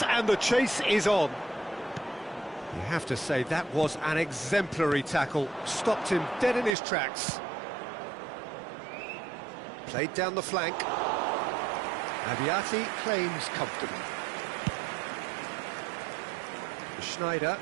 and the chase is on. You have to say that was an exemplary tackle, stopped him dead in his tracks. Played down the flank. Abiati claims comfortably. Schneider.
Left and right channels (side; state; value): left; drops out; at 6.7 s